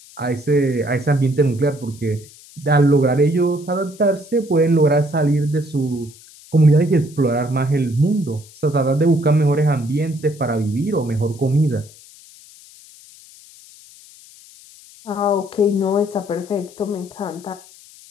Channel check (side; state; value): left; noise; hiss, 23 dB below the sound